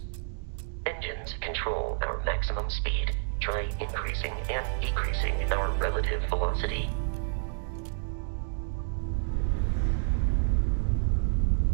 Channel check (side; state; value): left; silent; digital silence